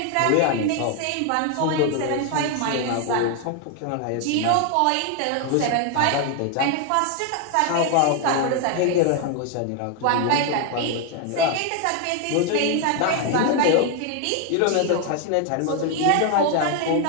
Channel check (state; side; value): different; both; correlation 0.01